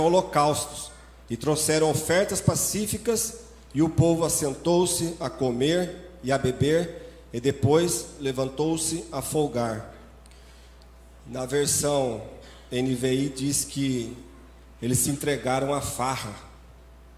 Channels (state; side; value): identical; both; correlation 1.00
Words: holocaustos, e trouxeram ofertas pacíficas, e o povo assentou-se a comer e a beber, e depois levantou-se a folgar. Na versão NVI diz que eles se entregaram à farra,